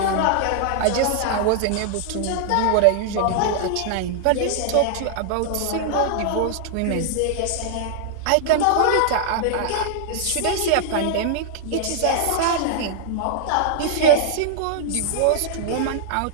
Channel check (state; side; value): different; both; correlation -0.01